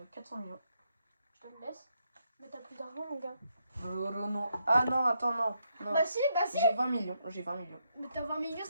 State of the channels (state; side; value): inverted; both; correlation -0.79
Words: 400 millions. Je te le laisse. Mais t'as plus d'argent, mon gars. Non. Ah non, attends, non. Bah si. J'ai 20 millions. Mais t'as 20 millions,